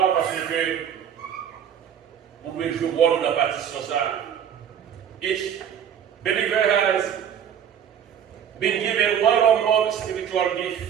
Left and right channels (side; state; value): left; quieter; 8.7 dB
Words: parce que vous pouvez jouer dans la partition ça. Each believer has been given one or more spiritual gifts